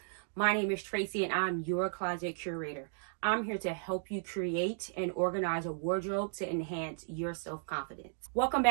My name is Tracy and I'm your closet curator. I'm here to help you create and organize a wardrobe to enhance your self-confidence. Welcome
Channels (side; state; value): left; silent; digital silence